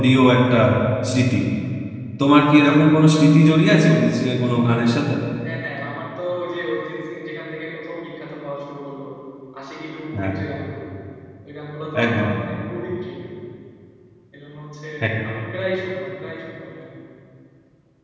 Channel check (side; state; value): both; identical; correlation 1.00